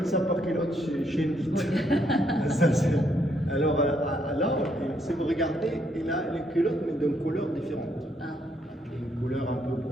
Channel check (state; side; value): normal; both; correlation 0.73